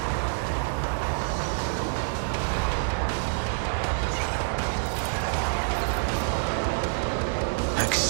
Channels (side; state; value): left; silent; 60 dB below the other